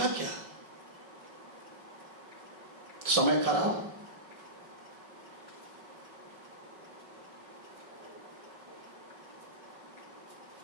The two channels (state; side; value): late; left; 5.4 ms